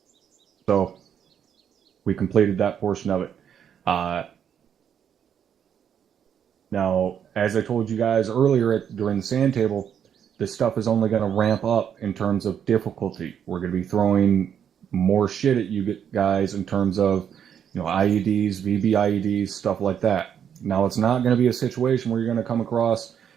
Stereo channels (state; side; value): quieter; left; 8.5 dB